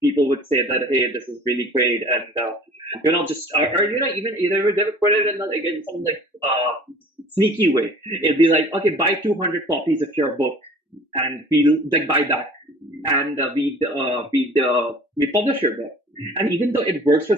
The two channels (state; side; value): normal; both; correlation 0.47